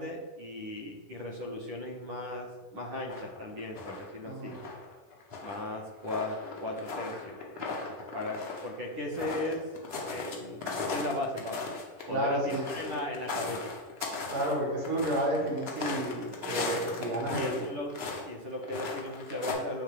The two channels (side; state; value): left; late; 9.6 ms